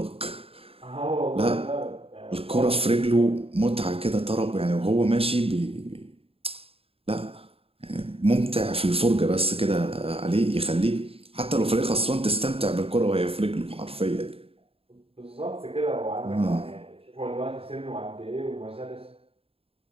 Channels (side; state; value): left; late; 0.28 ms